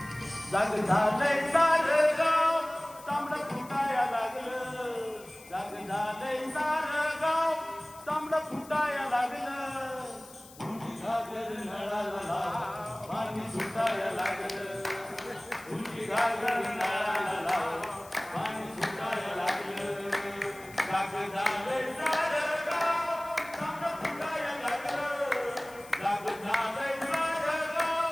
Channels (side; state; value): left; noise; hiss, 21 dB below the sound